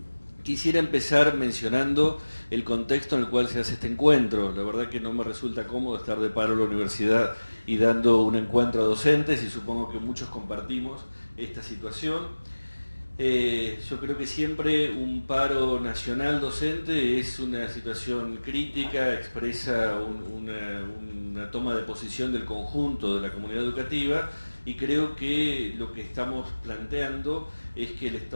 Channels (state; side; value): inverted; both; correlation -1.00